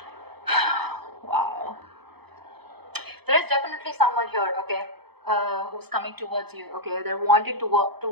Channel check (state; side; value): late; left; 0.98 ms